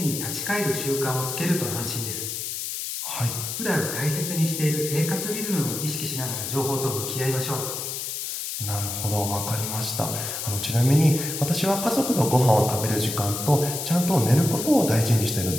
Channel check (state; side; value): noise; left; hiss, 5 dB below the sound